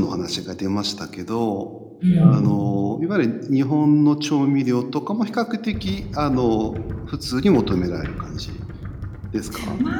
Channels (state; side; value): identical; both; correlation 1.00